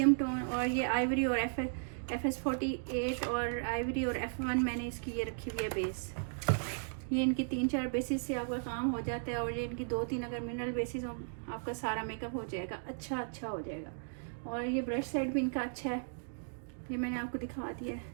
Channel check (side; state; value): left; silent; digital silence